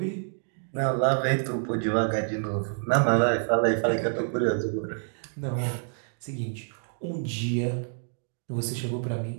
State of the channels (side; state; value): left; silent; digital silence